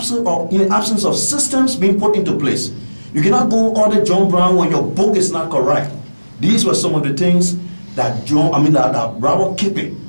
absence of systems being put into place. You cannot go audit John Brown when your book is not correct. These were some of the things that Robert Kippy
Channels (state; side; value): inverted; both; correlation -1.00